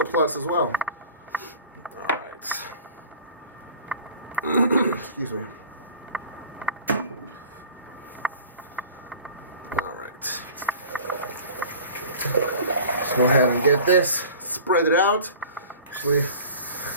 plus as well. Alright. Excuse me. Alright. Let's go ahead and get this. Spread it out. Actually,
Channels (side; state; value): both; inverted; correlation -0.43